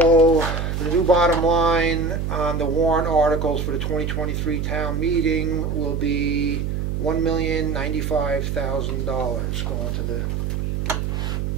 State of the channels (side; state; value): right; noise; hum, 1 dB below the sound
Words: the new bottom line on the warrant articles for the 2023 town meeting will be $1,095,000 going to the